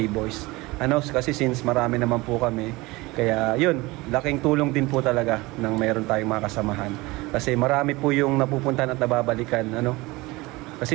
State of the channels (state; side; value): quieter; left; 22.0 dB